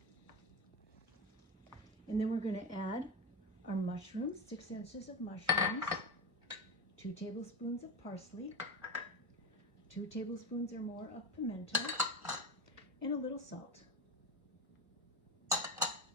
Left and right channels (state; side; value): normal; both; correlation 0.18